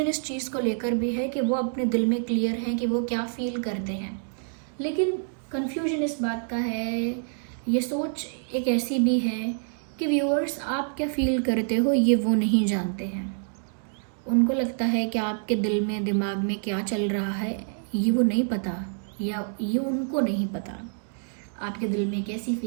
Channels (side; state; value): left; silent; digital silence